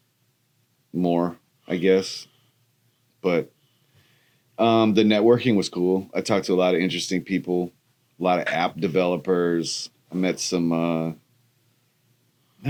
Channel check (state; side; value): identical; both; correlation 1.00